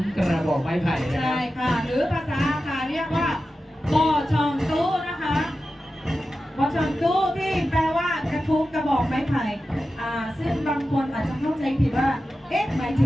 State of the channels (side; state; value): both; normal; correlation 0.93